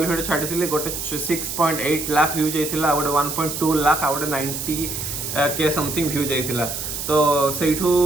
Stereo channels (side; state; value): right; noise; hiss, 5 dB below the sound